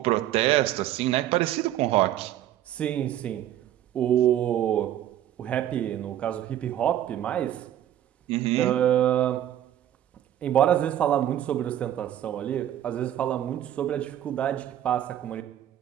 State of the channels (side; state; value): left; quieter; 11.8 dB